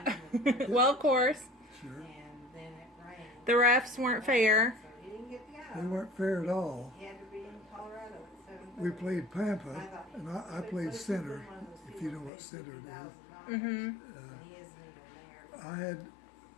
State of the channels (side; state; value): right; drops out; at 12.3 s